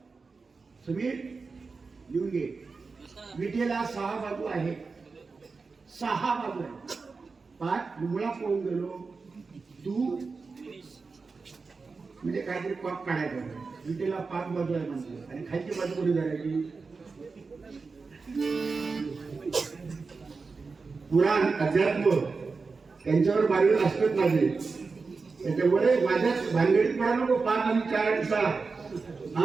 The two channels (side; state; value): left; quieter; 4.4 dB